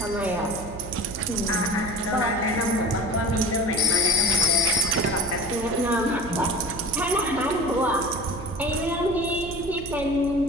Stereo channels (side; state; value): right; noise; hum, 12 dB below the sound